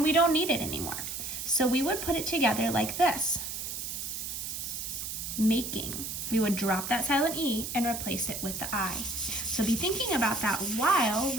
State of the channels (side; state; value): right; noise; hiss, 5 dB below the sound